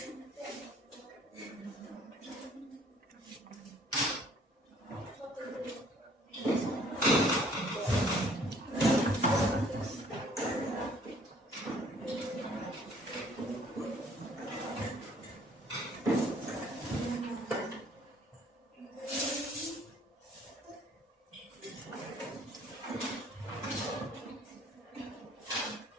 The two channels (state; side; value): normal; both; correlation 0.58